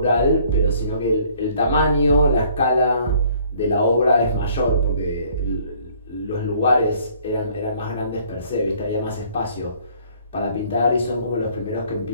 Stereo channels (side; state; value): both; inverted; correlation -0.59